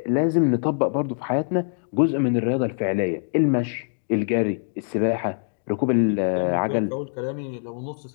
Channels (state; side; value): silent; right; digital silence